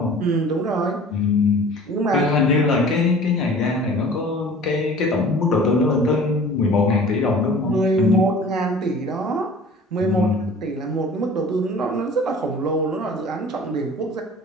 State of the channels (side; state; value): both; normal; correlation 0.45